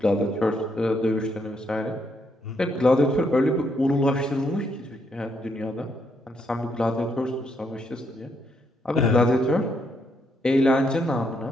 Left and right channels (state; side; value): normal; both; correlation 0.75